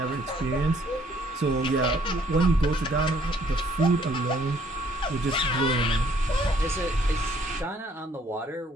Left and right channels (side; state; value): both; normal; correlation 0.63